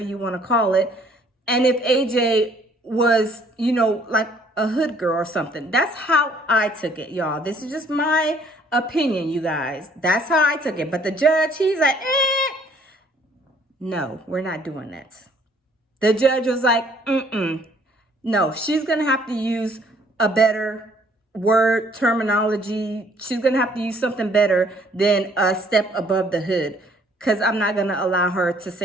you want to call it. And if AJ was, like a hood girl or something. That's how I took it, y'all. This is just my opinion, you guys. That's how I took it. But the judge, he's like, no, we're not doing that. The judge was like, no, she's going to have to use a better word terminology. She's going to have to use something better than a step above the hood, because I'm not going to allow her to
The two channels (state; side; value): normal; both; correlation 0.61